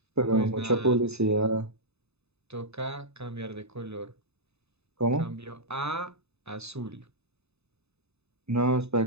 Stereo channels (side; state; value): left; late; 0.80 ms